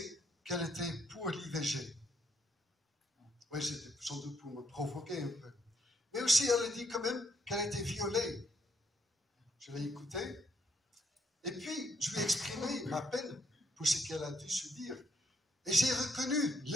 qu'elle était pour l'IVG. Oui, c'était sans doute pour me provoquer un peu. Mais aussi, elle a dit quand même qu'elle était violée. Je l'ai écoutée. Et puis, je lui ai exprimé ma peine pour ce qu'elle a dû subir. Et j'ai reconnu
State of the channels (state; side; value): normal; both; correlation 0.74